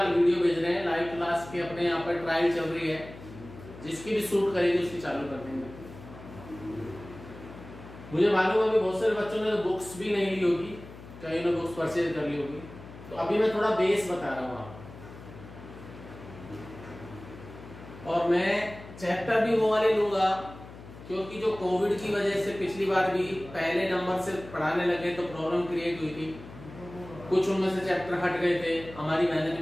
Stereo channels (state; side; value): noise; left; hum, 16 dB below the sound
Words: वीडियो भेज रहे हैं लाइव क्लास के, अपने यहाँ पर ट्रायल चल रही है। जिसकी भी सूट करेगी उसकी चालू कर देंगे। मुझे मालूम है अभी बहुत सारे बच्चों ने तो बुक्स भी नहीं ली होगी, कहीं ने बुक्स परचेज कर ली होगी। तो अभी मैं थोड़ा बेस बता रहा हूँ आपको, और मैं चैप्टर भी वो वाले लूंगा क्योंकि जो कोविड की वजह से पिछली बार भी पहले नंबर से पढ़ाने लगे तो प्रॉब्लम क्रिएट हुई थी। कुछ उनमें से चैप्टर हट गए थे, हमारी मेहनत